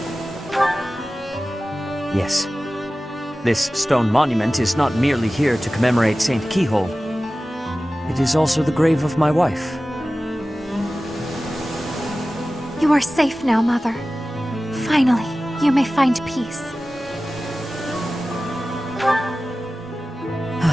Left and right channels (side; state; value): both; normal; correlation 0.96